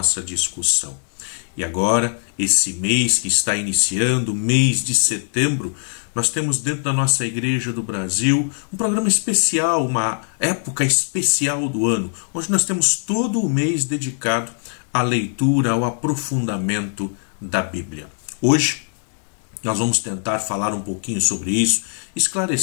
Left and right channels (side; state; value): right; silent; 65 dB below the other